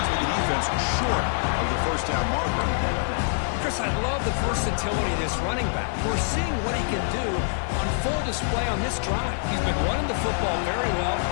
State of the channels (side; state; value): right; silent; digital silence